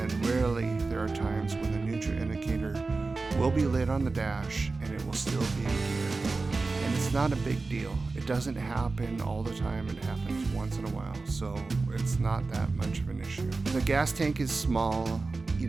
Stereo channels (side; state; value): left; quieter; 3.8 dB